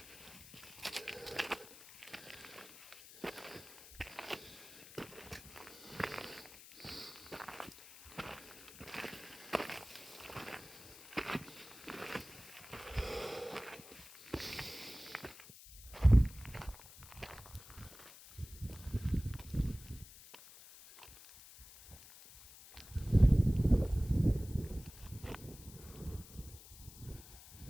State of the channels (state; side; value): noise; left; hiss, 17 dB below the sound